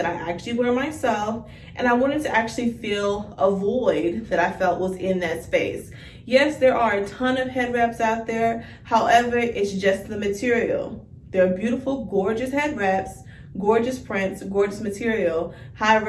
I actually wear myself, and I wanted to actually fill a void that I felt was in that space. Yes, there are a ton of head wraps out there. However, it's just the material. They're beautiful, gorgeous head wraps, gorgeous prints, gorgeous material.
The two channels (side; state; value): both; identical; correlation 1.00